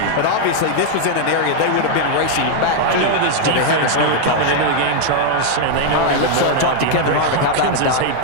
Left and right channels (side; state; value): both; different; correlation 0.00